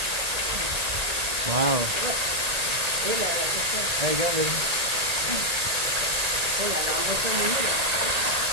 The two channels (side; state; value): left; late; 1.8 ms